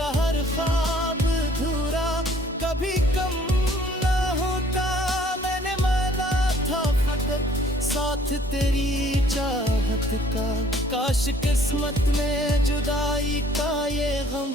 हर ख्वाब अधूरा कभी कम ना होता। मैंने माना था फकत साथ तेरी चाहत का, काश किस्मत में जुदाई का ये गम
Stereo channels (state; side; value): normal; both; correlation 0.58